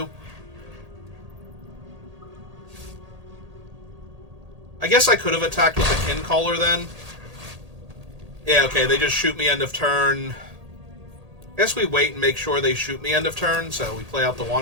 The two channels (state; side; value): late; left; 1.8 ms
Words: I guess I could have attacked with the Kincaller then. Yeah, okay, they just shoot me end of turn. I guess we wait and make sure they shoot me end of turn, so we play out the